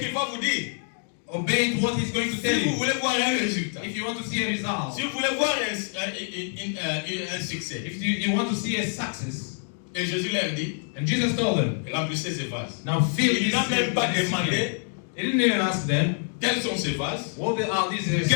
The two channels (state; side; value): silent; right; 58 dB below the other